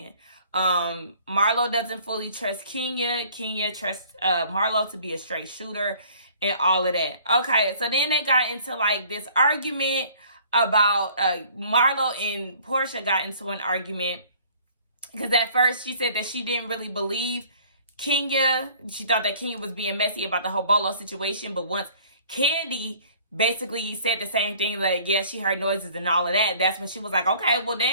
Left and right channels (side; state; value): both; inverted; correlation -0.54